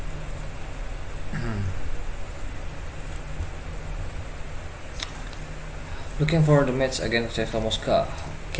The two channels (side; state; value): both; identical; correlation 1.00